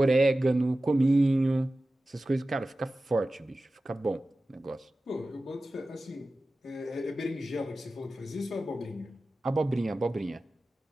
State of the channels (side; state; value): both; normal; correlation 0.95